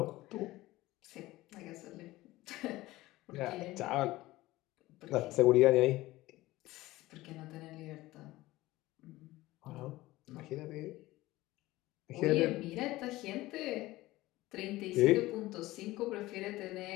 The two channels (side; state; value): right; quieter; 18.0 dB